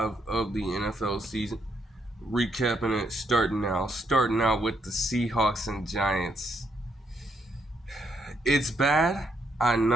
of the NFL season. Recapping it, starting now. Starting out with the Seahawks and Giants. It's bad, I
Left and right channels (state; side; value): normal; both; correlation 0.76